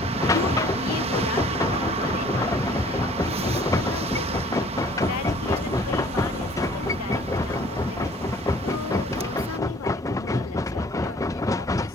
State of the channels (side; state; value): both; normal; correlation 0.54